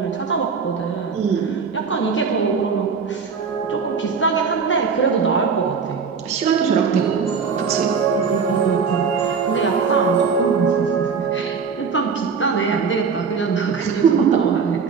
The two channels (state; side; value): quieter; left; 5.6 dB